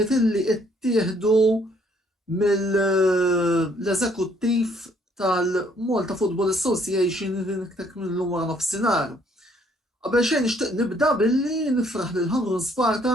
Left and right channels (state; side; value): normal; both; correlation 0.65